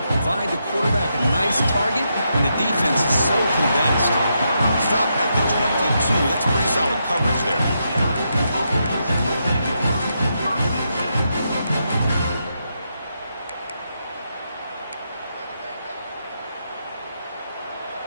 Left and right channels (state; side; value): inverted; both; correlation -0.82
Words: provide the quarterback a nice target when the defense is so condensed. Stop at the 22. That's pretty solid coverage there.